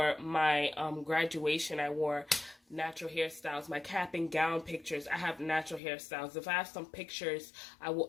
my graduation, I wore natural hairstyles. My cap and gown pictures, I have natural hairstyles. If I have some pictures, I will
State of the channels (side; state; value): right; drops out; at 5.8 s